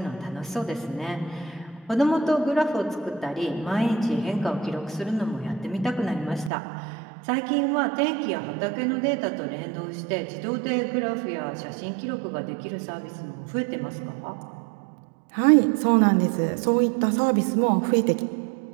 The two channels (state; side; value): drops out; left; at 6.5 s